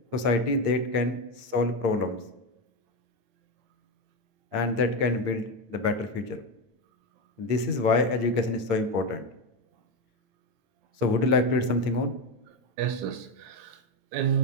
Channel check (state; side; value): late; left; 8.7 ms